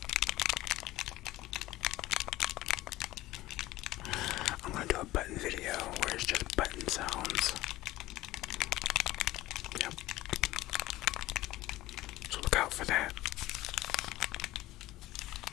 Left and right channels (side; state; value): right; quieter; 17.0 dB